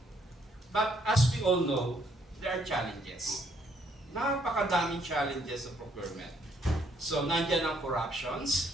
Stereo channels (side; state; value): both; normal; correlation 0.69